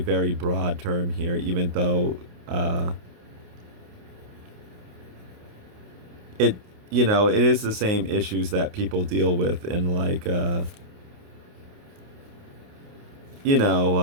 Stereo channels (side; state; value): left; late; 28 ms